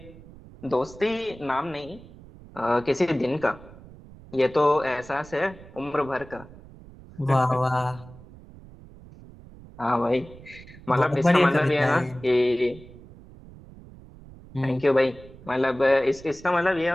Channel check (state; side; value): noise; right; rumble, 20 dB below the sound